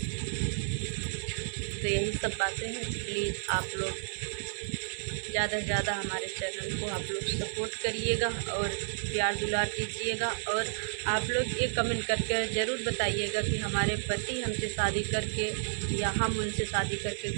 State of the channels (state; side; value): silent; left; 56 dB below the other